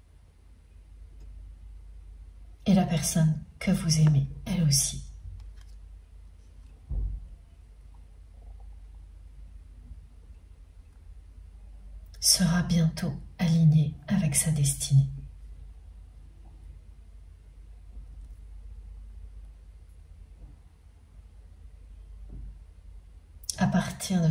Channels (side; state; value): both; identical; correlation 1.00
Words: Et la personne que vous aimez, elle aussi, sera bientôt alignée avec sa destinée. À partir de